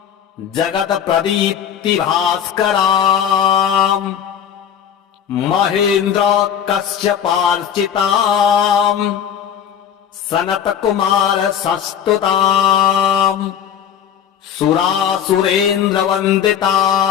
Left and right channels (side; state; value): right; quieter; 8.8 dB